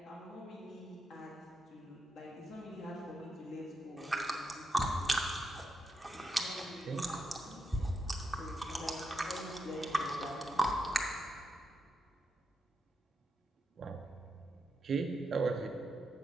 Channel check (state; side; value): normal; both; correlation 0.84